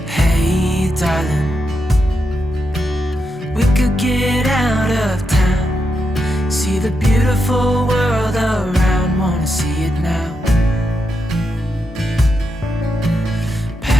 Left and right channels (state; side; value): normal; both; correlation 0.84